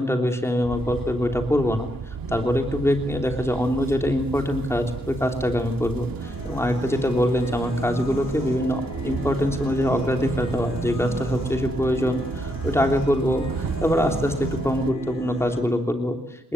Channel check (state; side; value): normal; both; correlation 0.78